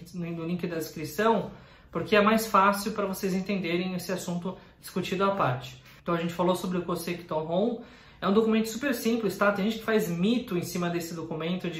no link da descrição, porque é mais fácil para vocês entenderem esse assunto discutido à parte. Então, a gente falou sobre o Kosekito-hon, é um documento super simples, tá? Tem gente que faz mito em cima desse documento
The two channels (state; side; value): identical; both; correlation 1.00